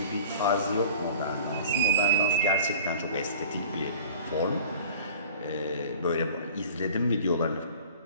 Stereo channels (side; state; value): both; inverted; correlation -0.44